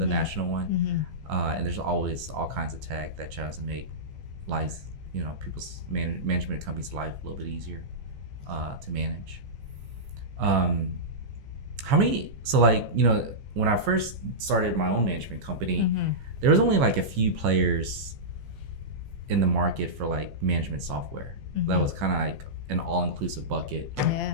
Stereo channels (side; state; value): left; late; 15 ms